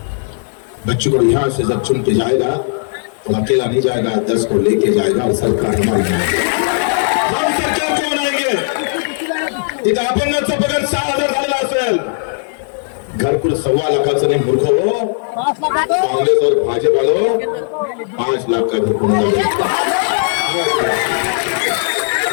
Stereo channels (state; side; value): silent; right; digital silence